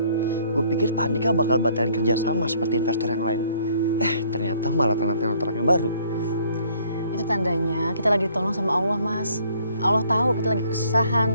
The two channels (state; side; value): inverted; both; correlation -0.61